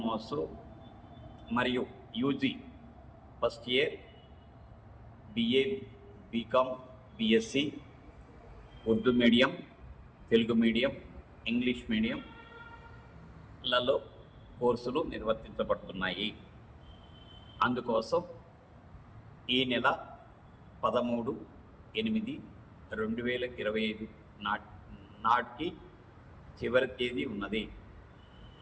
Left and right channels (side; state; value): both; identical; correlation 1.00